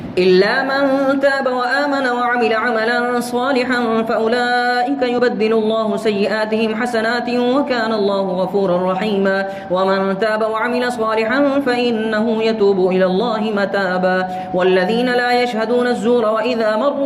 إلا من تاب وآمن وعمل عملا صالحا فأولئك يبدل الله سيئاتهم حسنات وكان الله غفورا رحيما. ومن تاب وعمل صالحا فإنه يتوب إلى الله متابا. والذين لا يشهدون الزور وإذا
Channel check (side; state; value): both; identical; correlation 1.00